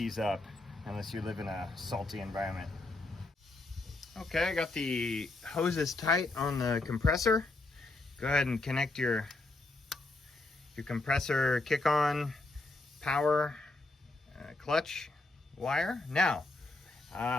up unless you live in a salty environment. Okay, I got the hoses tight on the compressor. Go ahead and connect your compressor kick-on power clutch wire. Now,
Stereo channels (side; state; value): right; quieter; 3.0 dB